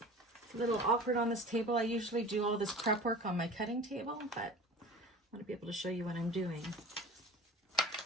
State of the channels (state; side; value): normal; both; correlation 0.39